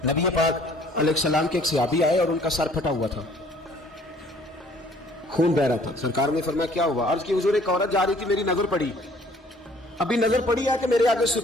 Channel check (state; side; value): normal; both; correlation 0.56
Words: نبی پاک علیہ السلام کے ایک صحابی آئے اور ان کا سر پھٹا ہوا تھا، خون بہ رہا تھا۔ سرکار نے فرمایا کیا ہوا؟ عرض کی حضور ایک عورت جا رہی تھی، میری نظر پڑی، ابھی نظر پڑی ہے کہ میرے آگے